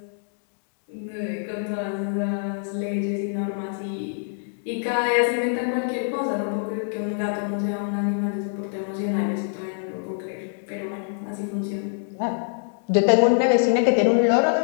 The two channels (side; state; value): right; silent; digital silence